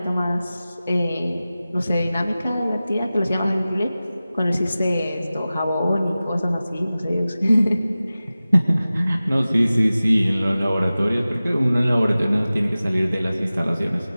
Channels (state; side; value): inverted; both; correlation -0.96